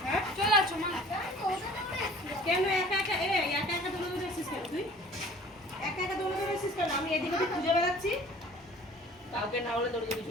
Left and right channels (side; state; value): both; normal; correlation 0.49